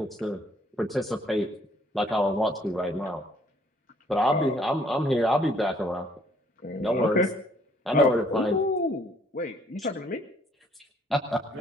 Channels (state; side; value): normal; both; correlation 0.63